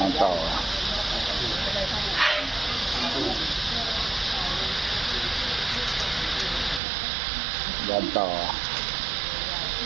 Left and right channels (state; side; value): drops out; left; at 6.8 s